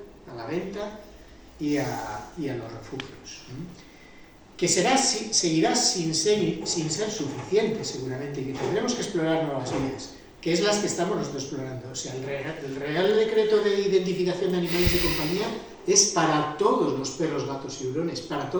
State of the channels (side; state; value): both; identical; correlation 1.00